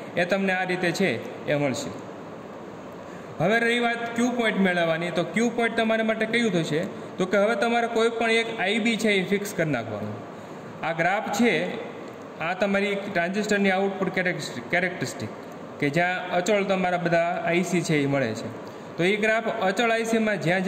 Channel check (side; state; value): both; identical; correlation 1.00